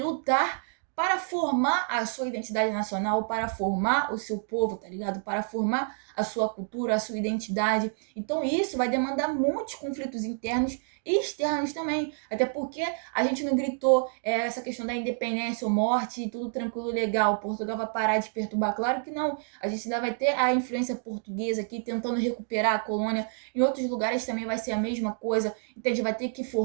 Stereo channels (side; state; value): left; silent; 56 dB below the other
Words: para formar a sua identidade nacional, para formar o seu povo, tá ligado? Para formar a sua cultura, a sua identidade. Então isso vai demandar muitos conflitos internos e externos também. Até porque a gente não gritou essa questão da independência ou morte, tudo tranquilo, legal, Portugal vai parar de perturbar. Claro que não. A gente ainda vai ter a influência portuguesa aqui, tentando recuperar a colônia. Em outros lugares também vai ser a mesma coisa. Então a gente vai ter que